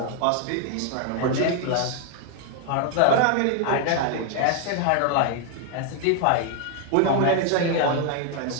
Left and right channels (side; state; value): both; different; correlation 0.01